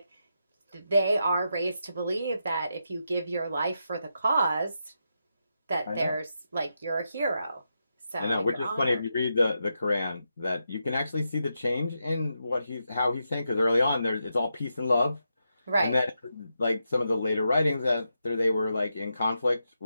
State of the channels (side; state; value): both; inverted; correlation -0.85